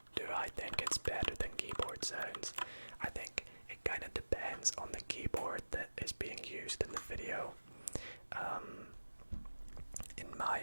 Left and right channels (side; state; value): both; inverted; correlation -1.00